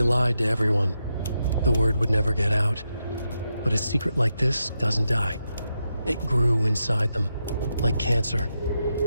lied to everyone. The word would never get out. But a secret like this doesn't die. It grew inside them, like cancer.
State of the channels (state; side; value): inverted; both; correlation -0.85